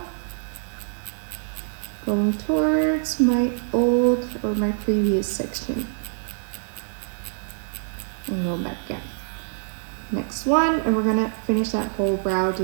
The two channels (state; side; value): silent; left; digital silence